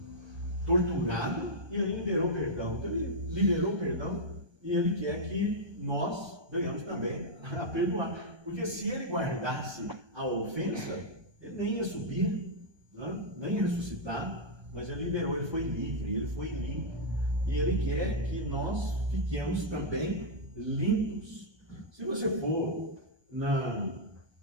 torturado, e ele liberou perdão. Então ele liberou perdão e ele quer que nós venhamos também a perdoar. Porque se ele guardasse a ofensa, ele nem ia subir, né? Nem ia ressuscitar, mas ele liberou, ele foi livre, ele foi limpo. E ele quer que nós fiquemos também limpos. Se você for na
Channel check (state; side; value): late; left; 1.3 ms